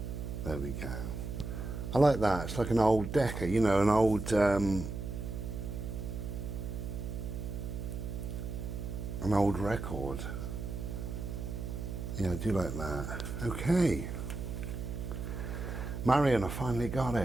There we go. I like that. It's like an old Decca, you know, an old record. Yeah, I do like that. Okay. Marion, I finally got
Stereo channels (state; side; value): noise; right; hum, 5 dB below the sound